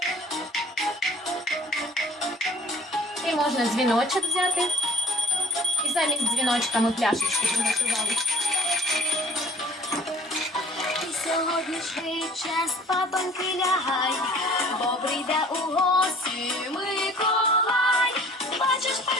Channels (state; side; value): normal; both; correlation 0.51